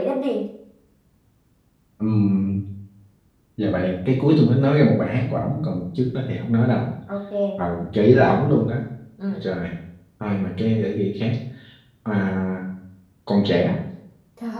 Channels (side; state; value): both; identical; correlation 1.00